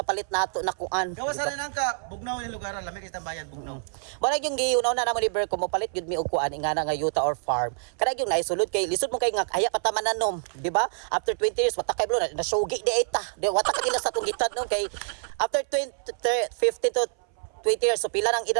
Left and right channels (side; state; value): left; silent; 58 dB below the other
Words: nato na kuan. Gawas na nang ka bugnaw ni lugar lami kay tambayan bugnaw. Mara yung giunaw na namo ni Ber ko mo palit gyud mi og kuan ingana nga yuta or farm. Kada yung naisulod kay lisod mo kay nga haya pa ta mananom, di ba? After 20 years wata kay blo na sugi di eta. Di wata ka ila sa tong gitad no kay after 50 to 20 years so pila nang